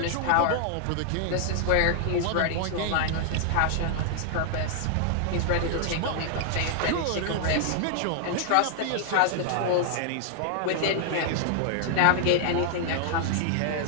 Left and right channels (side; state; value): both; different; correlation 0.00